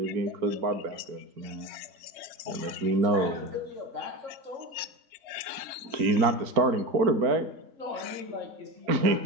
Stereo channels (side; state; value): left; late; 4.4 ms